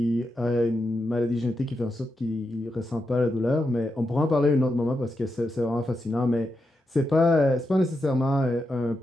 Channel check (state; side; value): normal; both; correlation 0.86